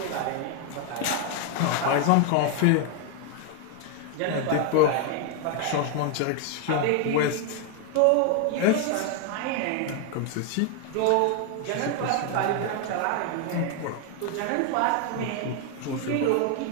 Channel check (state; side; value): different; both; correlation 0.01